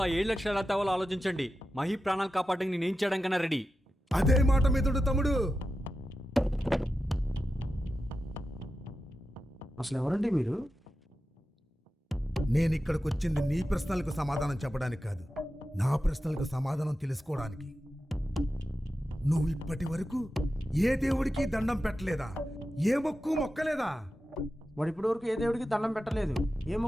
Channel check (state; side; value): normal; both; correlation 0.91